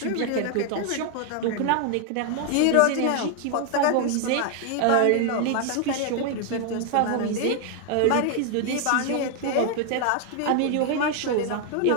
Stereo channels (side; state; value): both; different; correlation 0.00